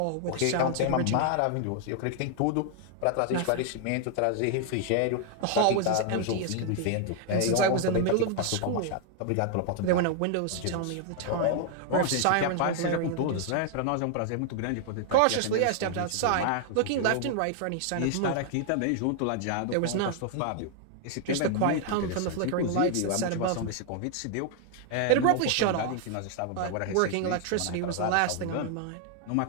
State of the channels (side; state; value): both; different; correlation 0.00